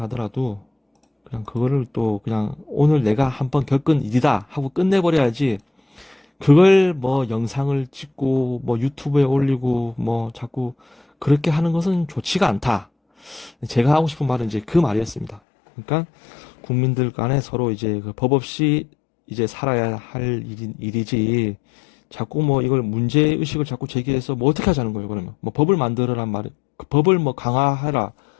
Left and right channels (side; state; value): right; drops out; at 15.4 s